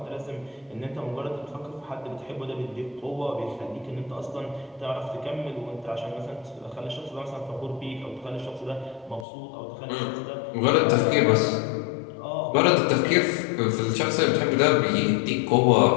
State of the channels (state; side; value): drops out; right; at 9.2 s